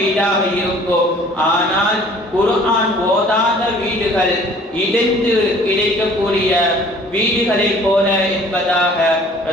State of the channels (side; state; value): both; normal; correlation 0.52